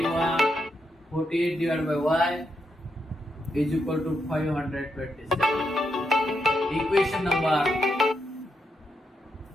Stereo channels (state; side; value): normal; both; correlation 0.82